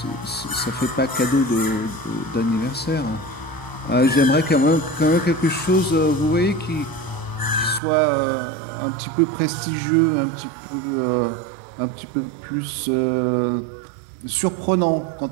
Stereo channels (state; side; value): drops out; left; at 7.8 s